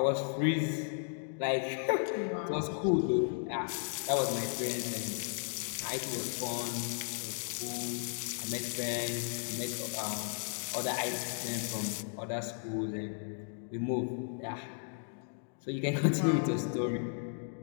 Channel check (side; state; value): right; silent; digital silence